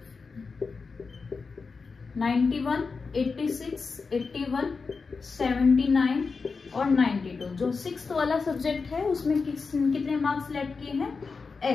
91, 86, 81, 79 और 92। जो 6th वाला सब्जेक्ट है उसमें कितने मार्क्स लेट किए हैं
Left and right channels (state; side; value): quieter; right; 4.7 dB